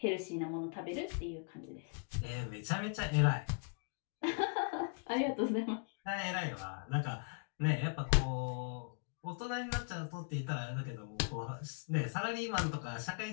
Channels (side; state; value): right; quieter; 38.0 dB